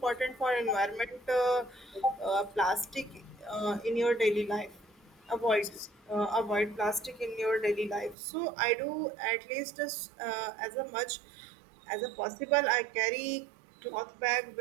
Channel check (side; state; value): left; drops out; at 8.2 s